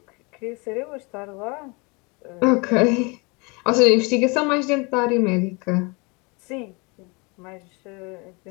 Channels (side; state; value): right; quieter; 29.0 dB